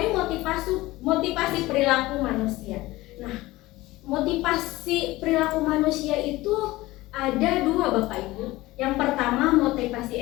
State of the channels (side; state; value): right; quieter; 18.8 dB